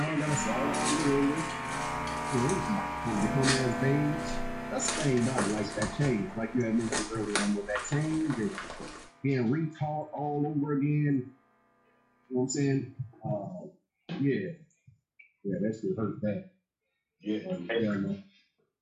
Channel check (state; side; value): identical; both; correlation 1.00